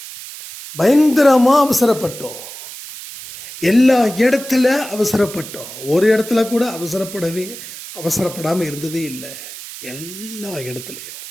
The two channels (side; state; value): right; noise; hiss, 13 dB below the sound